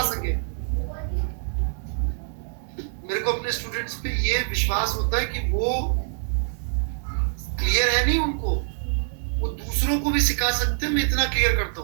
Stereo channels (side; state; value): left; silent; digital silence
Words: सके। मेरे को अपने स्टूडेंट्स पे ये विश्वास होता है कि वो क्लियर है नहीं उनको, वो दूसरों को भी सिखा सकते हैं। मैं इतना क्लियर करता